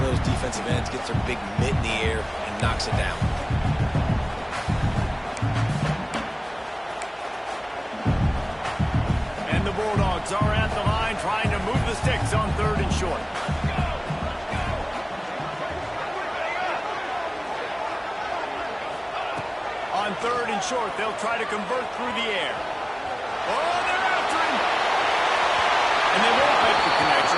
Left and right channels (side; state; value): both; identical; correlation 1.00